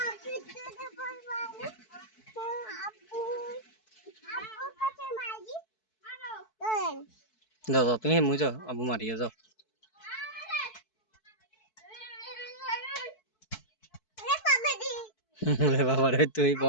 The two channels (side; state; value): right; late; 4.6 ms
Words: যাও যাও তুমি মুই যাও আবু মারিয়ে যাও বাবা রে তুই